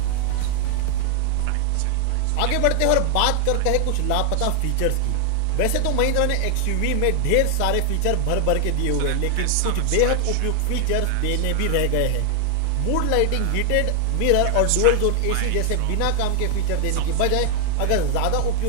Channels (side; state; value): both; different; correlation 0.00